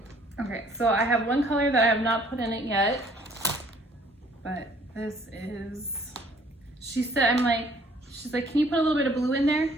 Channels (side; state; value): both; normal; correlation 0.59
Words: Okay, so I have one color that I have not put in it yet, but this is, she's like, can you put a little bit of blue in there?